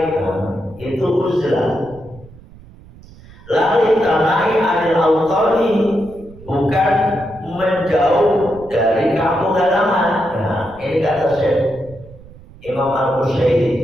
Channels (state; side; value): noise; right; rumble, 21 dB below the sound